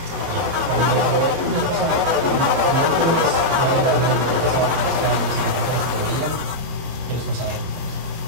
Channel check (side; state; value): left; late; 30 ms